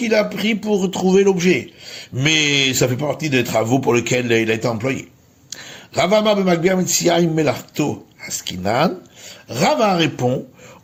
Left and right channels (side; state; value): both; identical; correlation 1.00